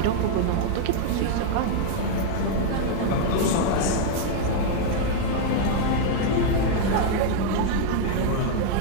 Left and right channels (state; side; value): different; both; correlation -0.01